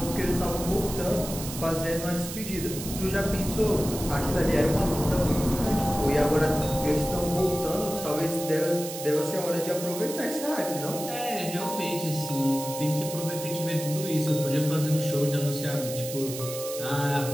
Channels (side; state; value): right; noise; hiss, 9 dB below the sound